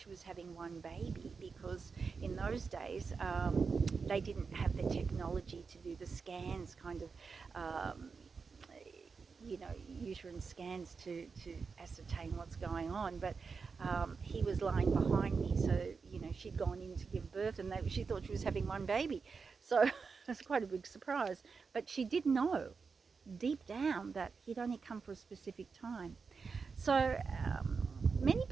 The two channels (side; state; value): left; quieter; 5.1 dB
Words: was having one baby, because in those days they didn't have the technology to do the scans, kind of uterine scans to ascertain what's going on. But he was lying behind me, so she'd gone in to give birth, and she thought she was having one baby. So it's quite a big surprise. But she did know deep down that he'd only come for a specific time. So many